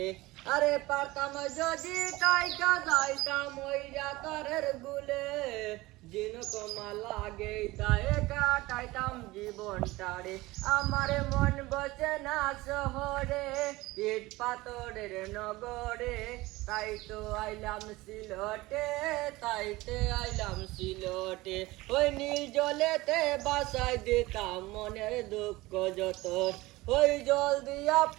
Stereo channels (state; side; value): quieter; left; 20.0 dB